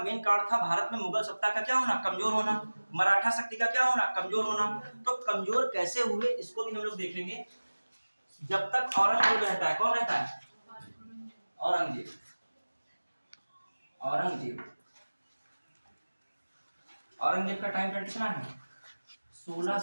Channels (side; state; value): both; inverted; correlation -1.00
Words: कारण था भारत में मुगल सत्ता का क्या होना, कमजोर होना, मराठा शक्ति का क्या होना, कमजोर होना। तो कमजोर कैसे हुए इसको भी हम लोग देखेंगे। जब तक औरंगजेब रहता है, कौन रहता है, औरंगजेब, औरंगजेब का टाइम पीरियड कितना है,